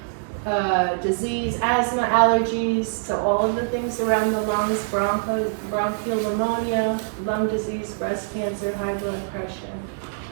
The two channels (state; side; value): silent; left; 62 dB below the other